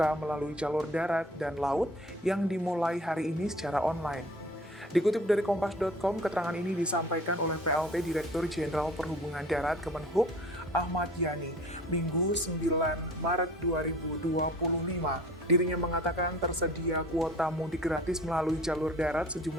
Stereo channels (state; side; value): normal; both; correlation 0.47